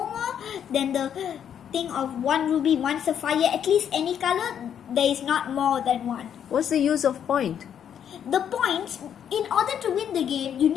more than the thing of 1 ruby, 1 Sapphire, at least any color, there is not more than 1. What's the use of point? The points, in order to win the game, you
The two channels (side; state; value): right; quieter; 8.9 dB